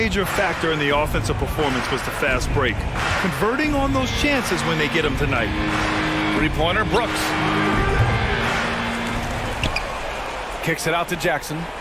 factor in the offensive performance was the fast break. Converting on those chances when they get them tonight. Three-pointer, Brooks. Kicks it out to Jackson.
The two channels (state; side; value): identical; both; correlation 1.00